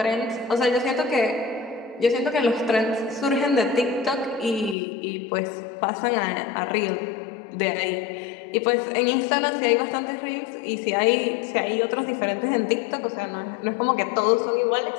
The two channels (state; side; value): drops out; right; at 4.8 s